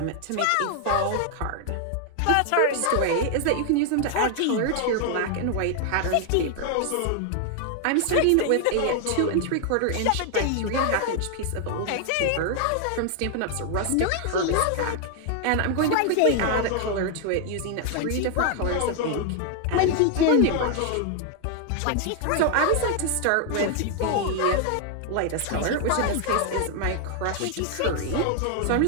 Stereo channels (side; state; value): both; different; correlation 0.00